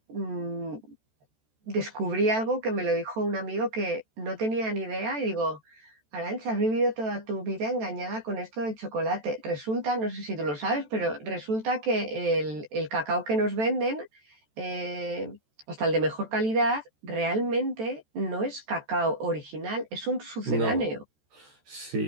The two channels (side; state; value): left; late; 14 ms